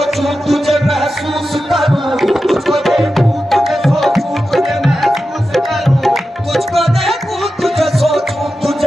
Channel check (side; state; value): both; normal; correlation 0.91